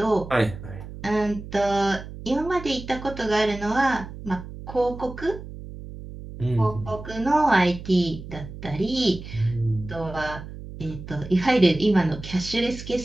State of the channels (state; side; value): noise; right; hum, 12 dB below the sound